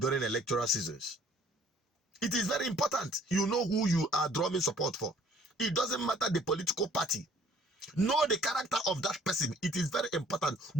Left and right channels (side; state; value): both; normal; correlation 0.57